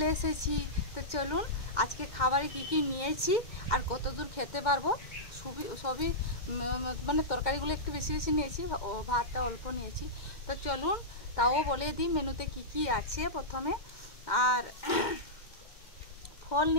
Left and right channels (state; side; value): late; right; 2.1 ms